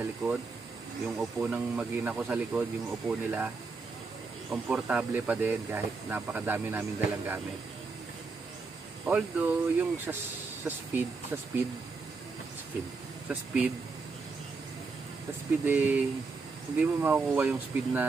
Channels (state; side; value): quieter; left; 4.3 dB